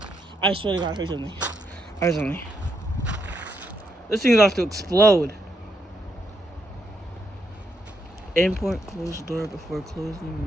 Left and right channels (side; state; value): both; normal; correlation 0.78